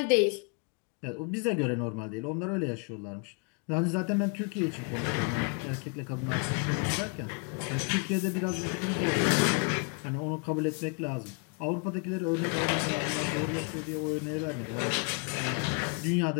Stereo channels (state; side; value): quieter; right; 36.8 dB